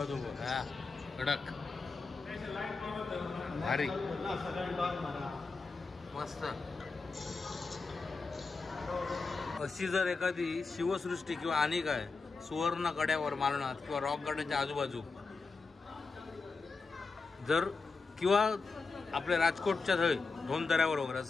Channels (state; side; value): quieter; right; 4.3 dB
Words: तो बघा. कडक भारी मस्त. अशी जर एखादी शिवसृष्टी किंवा आणि काय सुवर्ण कड्यावर मालनात किंवा रॉक गार्डनच्या आजूबाजू जर किंवा आपल्या राजकोटच्या थंय धोंदऱ्यावर वगैरे